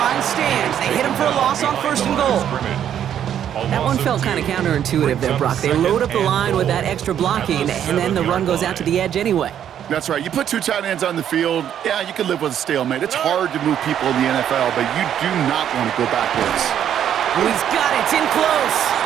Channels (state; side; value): quieter; left; 9.8 dB